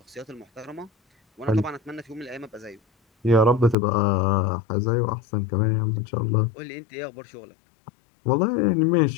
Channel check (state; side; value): drops out; right; at 3.8 s